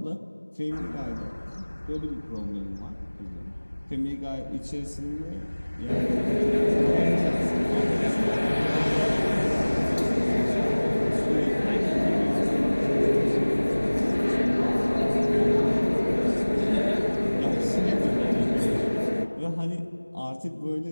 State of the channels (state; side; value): inverted; both; correlation -1.00